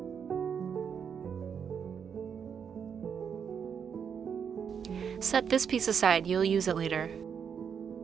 Set this piece aside, you'll use it later.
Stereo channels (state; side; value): quieter; left; 7.2 dB